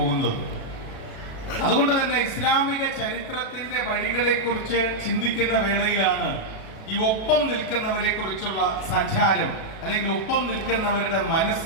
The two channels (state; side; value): late; right; 37 ms